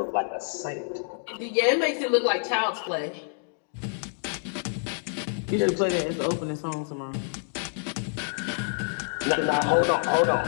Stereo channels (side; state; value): right; silent; digital silence